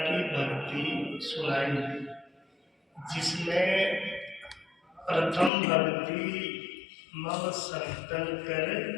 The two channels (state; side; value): drops out; right; at 5.5 s